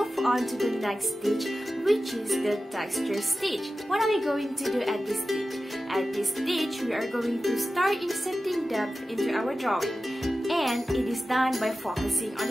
on to the next stage, which is the texture stage. What are we going to do at this stage? At this stage, we are going to start inserting depth into our drawing, and it is done by focusing on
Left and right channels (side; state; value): both; normal; correlation 0.94